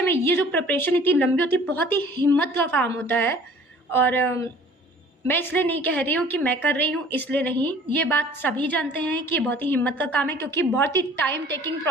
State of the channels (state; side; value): normal; both; correlation 0.51